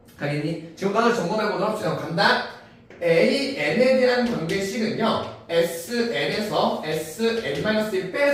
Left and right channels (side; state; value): both; identical; correlation 1.00